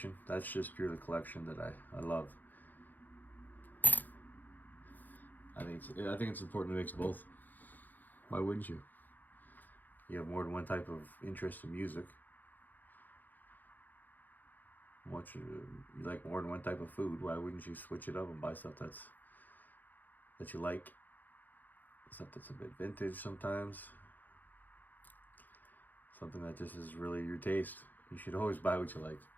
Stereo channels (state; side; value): late; right; 0.085 ms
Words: That's just purely collection that I love. I think it's important to mix both. Why wouldn't you? You have more than one type of interest in music. You like more than one type of food. Why wouldn't you switch it up and buy stuff that you like? Stuff that's a bit vintage sometimes. Something that just is really your taste. You should always buy what you like.